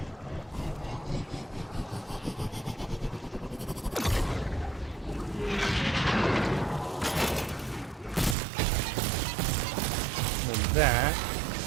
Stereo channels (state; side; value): drops out; left; at 8.3 s